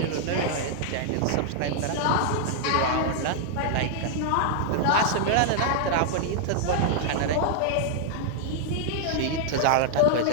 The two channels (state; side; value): different; both; correlation 0.00